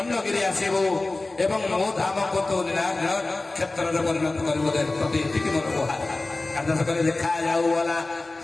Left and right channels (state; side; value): quieter; right; 3.1 dB